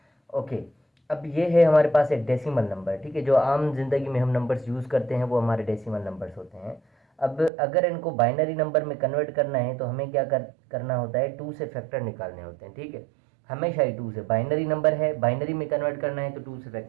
ओके, अब ये है हमारे पास एक डेसिमल नंबर, ठीक है। जो आम जिंदगी में हम नंबर्स यूज़ करते हैं वो हमारे डेसिमल नंबर्स होते हैं। अब अगर इनको बाइनरी नंबर में कन्वर्ट करना है तो हमें क्या करना होता है, 2 से फैक्टर निकालने होते हैं, ठीक है। हमेशा ही 2 से, बाइनरी नंबर है, बाइनरी में कन्वर्ट करना है तो 2 से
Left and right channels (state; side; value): drops out; left; at 7.5 s